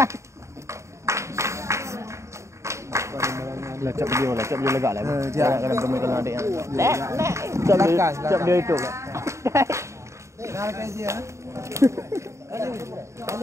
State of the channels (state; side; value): late; left; 0.14 ms